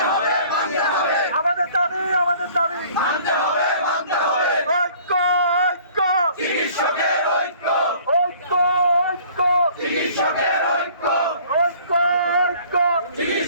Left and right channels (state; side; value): inverted; both; correlation -0.53